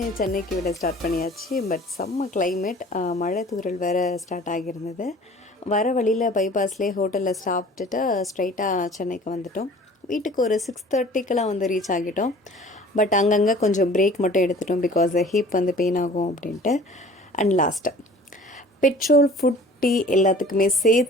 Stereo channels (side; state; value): both; normal; correlation 0.47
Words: சென்னைக்கு விட ஸ்டார்ட் பண்ணியாச்சு. பட் செம்ம கிளைமேட், மழை தூறல் வேறு ஸ்டார்ட் ஆகியிருந்தது. வர வழியில் பைபாஸ்லேயே ஹோட்டலில் சாப்பிட்டுட்டு ஸ்ட்ரைட்டாக சென்னைக்கு வந்துட்டோம். வீட்டுக்கு ஒரு 6:30க்கெலாம் வந்து ரீச் ஆகிட்டோம். பட் அங்கங்கே கொஞ்சம் பிரேக் மட்டும் எடுத்துட்டோம், பிகாஸ் ஹீப் வந்து பெயின் ஆகும் அப்படின்ட்டு. And last petrol, food, tea எல்லாத்துக்குமே